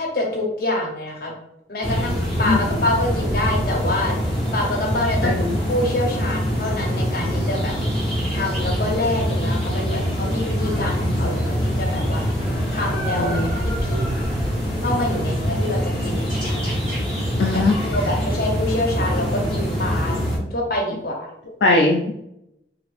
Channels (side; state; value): both; normal; correlation 0.51